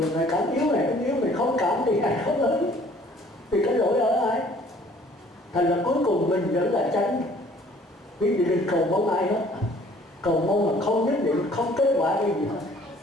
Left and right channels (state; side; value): normal; both; correlation 0.56